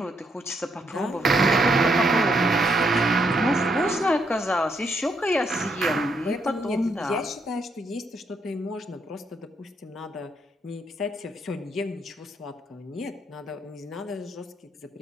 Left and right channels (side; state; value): both; normal; correlation 0.75